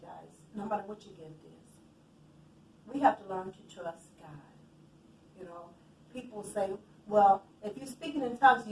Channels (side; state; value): both; identical; correlation 1.00